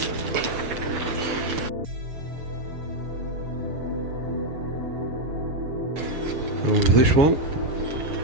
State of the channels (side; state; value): left; late; 7.1 ms